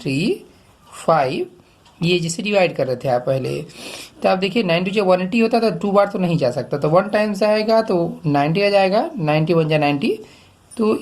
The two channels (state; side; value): identical; both; correlation 1.00